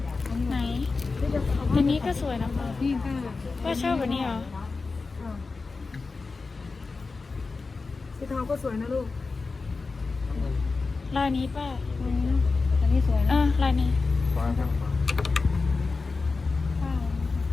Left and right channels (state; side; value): quieter; right; 4.1 dB